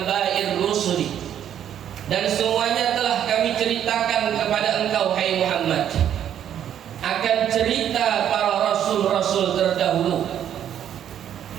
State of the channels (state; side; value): quieter; left; 10.0 dB